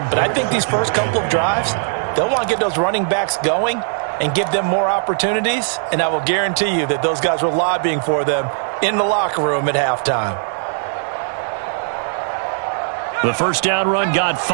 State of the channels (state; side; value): silent; left; digital silence